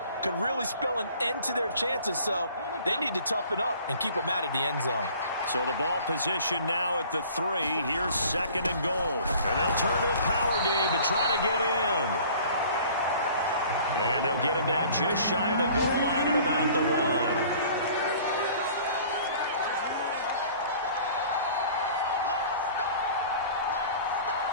could really spell an end to their chances, so they need to toughen up and keep them out of the end zone. So the ball position now at the 3. Here's 2nd and goal. And they'll turn to the power game to try to get in. And they'll get him down just shy of the goal line at about the 1.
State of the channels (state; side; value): inverted; both; correlation -0.49